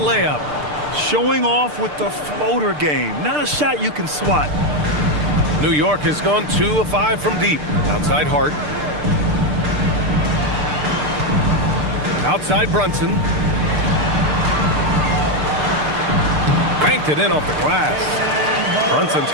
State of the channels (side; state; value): left; late; 6.7 ms